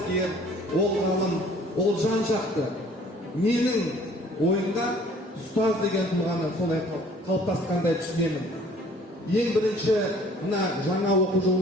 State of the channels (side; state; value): both; normal; correlation 0.54